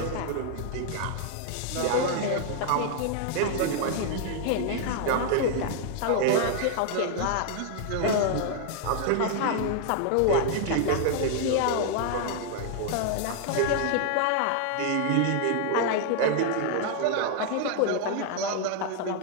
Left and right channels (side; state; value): both; different; correlation 0.00